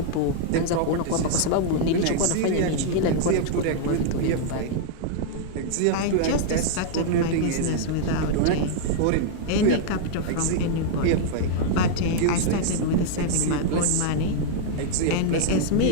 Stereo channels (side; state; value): both; different; correlation -0.01